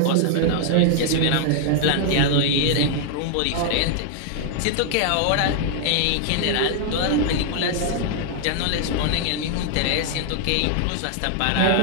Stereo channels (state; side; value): different; both; correlation 0.00